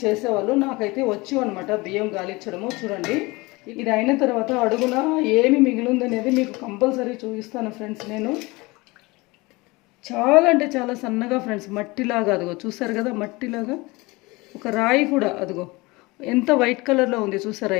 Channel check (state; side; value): quieter; right; 23.4 dB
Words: చేసేవాళ్ళు. నాకైతే వచ్చు అనమాట బియ్యం గాలించడము. చూడండి, ఇది అయిన తర్వాత అడుగున ఏమి మిగిలిందనేది మీకు కంపల్సరీ చూపిస్తాను ఫ్రెండ్స్. నేను చాలా అంటే చాలా సన్నగా ఫ్రెండ్స్, మట్టిలాగా, అదిగో చూసారు కదా, మట్టిలాగా ఒక రాయి కూడా, అదిగో ఎంత వైట్ కలర్లో ఉంది చూసారా